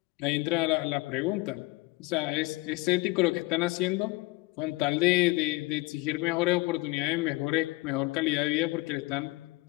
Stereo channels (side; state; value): right; quieter; 22.7 dB